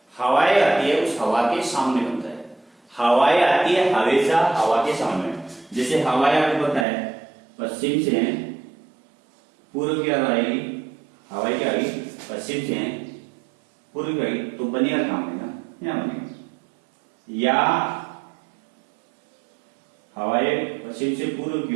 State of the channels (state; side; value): drops out; left; at 6.9 s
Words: हवाएं आती है उस हवा के सामने बनता है। हवाएं आती है हमेशा हवा के सामने, जैसे हवाएं आपको पता है पश्चिम से पूर्व की ओर आएगी, हवाएं क्या आएगी पश्चिम से पूर्व गई तो बनेगा कहां बनेगा, यहां बनेगा। या हवाएं पश्चिम से पूर्व